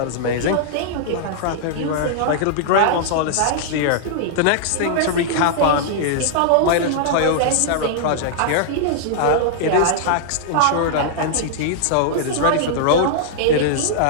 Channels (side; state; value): both; different; correlation -0.01